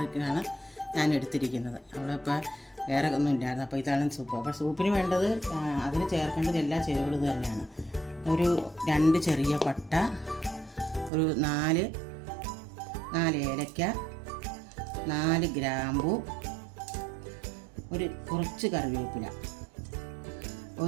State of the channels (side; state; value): left; drops out; at 11.1 s